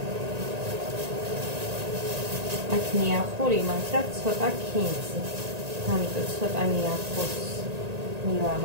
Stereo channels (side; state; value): left; late; 1.9 ms